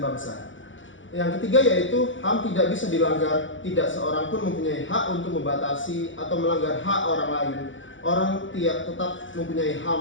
Yang ketiga yaitu HAM tidak bisa dilanggar, tidak seorang pun mempunyai hak untuk membatasi atau melanggar hak orang lain. Orang tetap mempunyai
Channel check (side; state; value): right; late; 0.56 ms